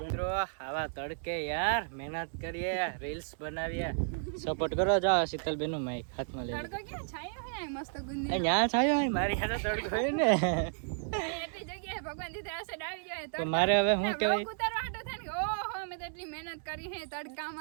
આવા તડકે યાર મહેનત કરીએ, રીલ્સ બનાવીએ, સપોર્ટ કરો. જાઓ શીતલબેન નું માઈક હાથમાં લઈ. તડકો ક્યાં છાયો હે મસ્ત ગુંદી. અહીંયા છાયો હોય, મારી હાથે તડકો હોય ને. એટલી જગ્યાએ ભગવાન દીધે આસે ડાવી જાય તો મારે હવે શું કહેવાય, ઉતારવા હાટો થાય ને, ઓહો મેં તો એટલી મહેનત કરી હે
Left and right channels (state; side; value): silent; left; digital silence